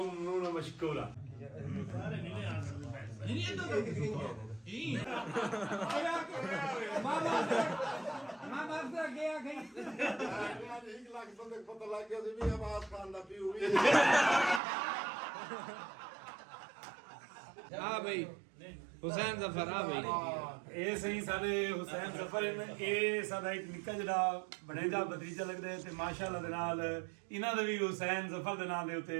ਮਸ਼ਕੂਰ ਹਾਂ हुसैन जफर ਇਹ ਸਹੀ ਸਾਡੇ ਹੁਸੈਨ ਜ਼ਫਰ ਇਹ ਸਾਡਾ ਇੱਕ ਨਿੱਕਾ ਜਿਹੜਾ ਬਣੇਜਾ ਬਦਰੀਜਾ ਲੱਗਦਾ ਹੈ ਤੇ ਮਾਸ਼ਾਅੱਲਾ ਦੇ ਨਾਲ ਇਹਨਾਂ ਦਾ ਵੀ ਹੁਸੈਨ ਜ਼ਫਰ ਦੇ ਨਾਮ ਦੇ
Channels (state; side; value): drops out; left; at 14.6 s